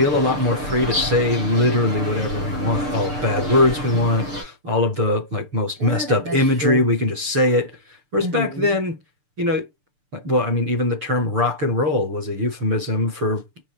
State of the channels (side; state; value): left; late; 6.7 ms